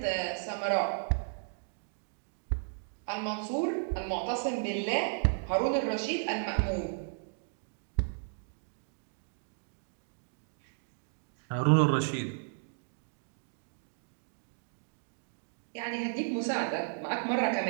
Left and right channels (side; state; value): left; silent; digital silence